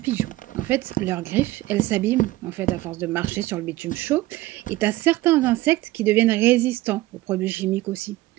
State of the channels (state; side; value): quieter; left; 17.6 dB